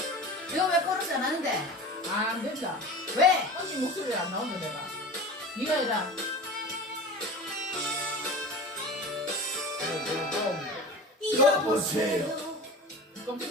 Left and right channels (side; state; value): both; normal; correlation 0.34